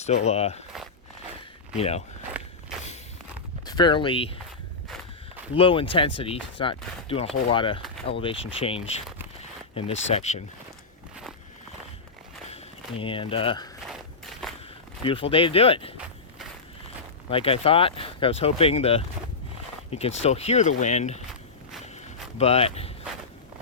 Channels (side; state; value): right; quieter; 4.2 dB